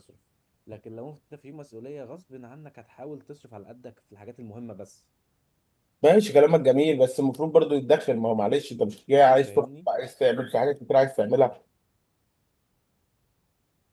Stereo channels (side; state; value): both; identical; correlation 1.00